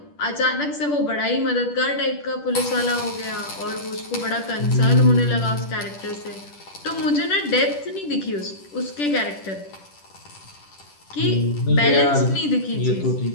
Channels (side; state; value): right; late; 10 ms